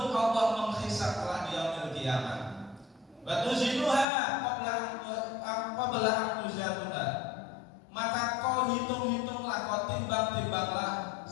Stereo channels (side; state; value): right; drops out; at 4.0 s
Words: Allah menghisab kelak di yaumil qiyamah. Wa tuzinuha qabla an tuzanuha. Maka kau hitung-hitunglah, kau timbang-timbanglah